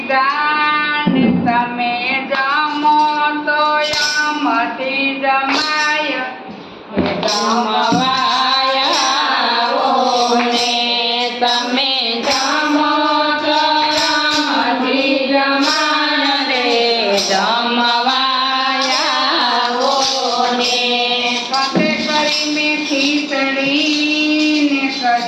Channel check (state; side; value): identical; both; correlation 1.00